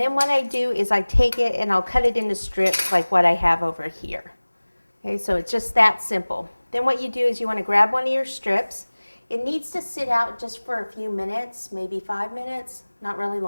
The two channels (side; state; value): both; inverted; correlation -1.00